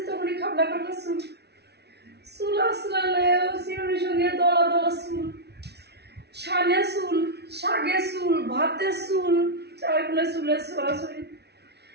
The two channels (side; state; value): left; late; 0.49 ms